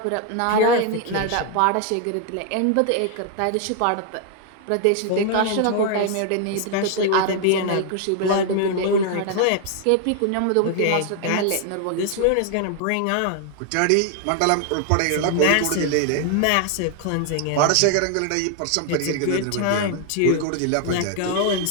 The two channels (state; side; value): different; both; correlation 0.00